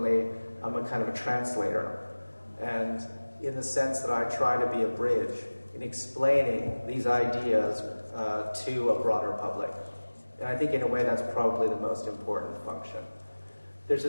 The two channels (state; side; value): inverted; both; correlation -1.00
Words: I'm a kind of a translator, and in the sense that I try to be a bridge in explaining these ideas to a broader public. And I think in a way that's probably the most important function. There's